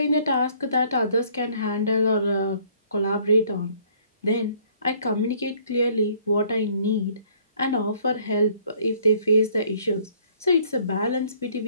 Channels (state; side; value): inverted; both; correlation -0.60